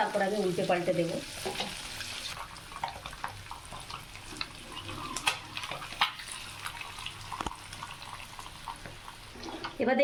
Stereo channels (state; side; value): identical; both; correlation 1.00